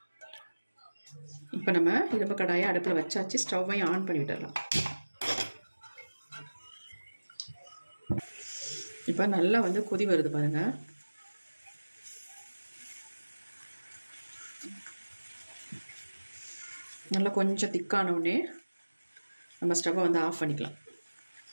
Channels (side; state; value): both; inverted; correlation -1.00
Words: இப்போ நம்ம இரும்பு கடாயை அடுப்பில் வச்சாச்சு. ஸ்டவ்வையும் ஆன் பண்ணி விட்டுடலாம். இப்போ நல்லா வந்து கொதி வருது பாருங்கள். நல்லா கொஞ்சம் திக்கான உடனே நம்ம ஸ்டவ்வை வந்து ஆஃப் பண்ணிக்கலாம்.